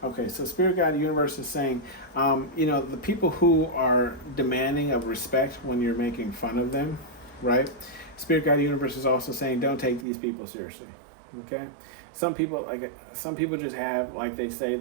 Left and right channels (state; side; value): drops out; left; at 10.1 s